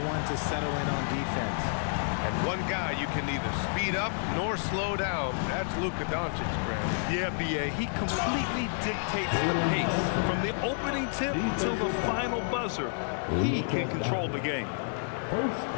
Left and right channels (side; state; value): right; silent; digital silence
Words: one to settle in on defense. And one guy you can neither speed up nor slow down. That's Luka Doncic, Grant. Yeah, B.A., he completely dictates the pace. From the opening tip till the final buzzer, he can control the game.